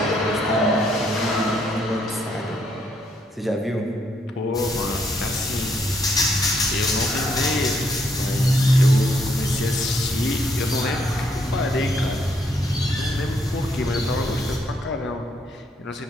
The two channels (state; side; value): normal; both; correlation 0.72